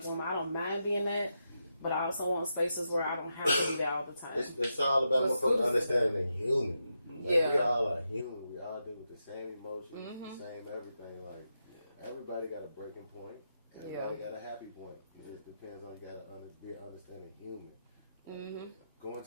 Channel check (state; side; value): inverted; both; correlation -0.85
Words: woman. I don't mind being that, but I also want spaces where I don't have to be there all the time. It's all about What's motherfuckers good? understanding the human. Like, Yeah. we all are human. We all deal with the same emotions, Mm-hmm. the same everything. Like everybody got a breaking point. Everybody got a happy point. It just depends on you gotta be an understanding human. Mm-hmm. Go